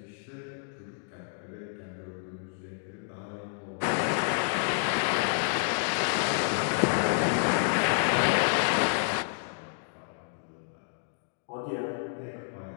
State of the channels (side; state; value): right; silent; digital silence